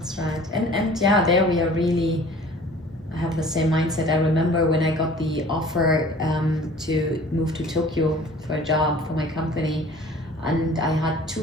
right. And yeah, there we are really have the same mindset. I remember when I got the offer to move to Tokyo for a job for my company, and I had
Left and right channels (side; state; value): both; normal; correlation 0.48